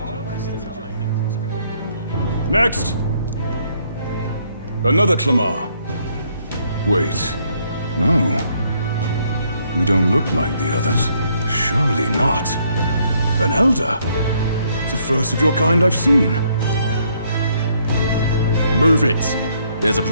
Next! Another Clamar. Wait. No. You don't look like the others. Surely not. An elder? It's the first of your kind I've seen. Move it. There's a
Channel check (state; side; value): inverted; both; correlation -0.69